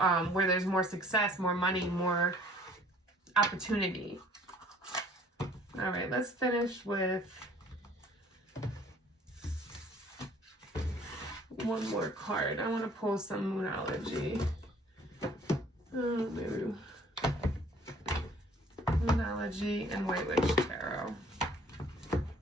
where there's more success, more money, more opportunity. All right, let's finish with one more card. I want to pull some Moonology. Maybe Moonology and White Witch Tarot.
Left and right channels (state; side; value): normal; both; correlation 0.54